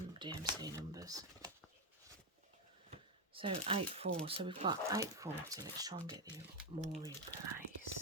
numbers. So 8-4, so we've got 840. Let's try and get more in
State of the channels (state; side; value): normal; both; correlation 0.07